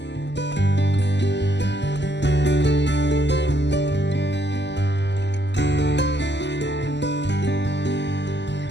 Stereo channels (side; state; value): right; late; 0.51 ms